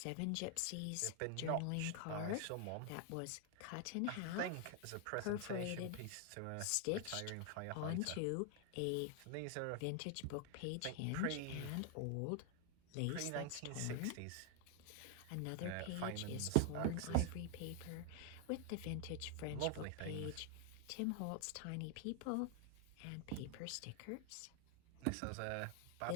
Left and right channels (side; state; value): both; different; correlation 0.00